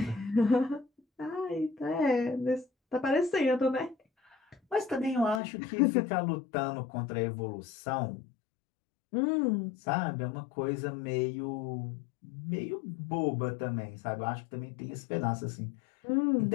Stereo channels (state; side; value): drops out; right; at 5.4 s